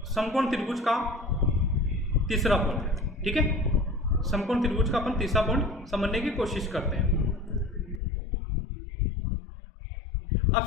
समकोण त्रिभुज का तीसरा पॉइंट। ठीक है, समकोण त्रिभुज का अपन तीसरा पॉइंट समझने की कोशिश करते हैं। अब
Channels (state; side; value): drops out; right; at 8.0 s